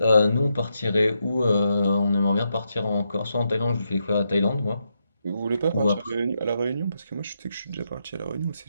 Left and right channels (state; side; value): inverted; both; correlation -0.82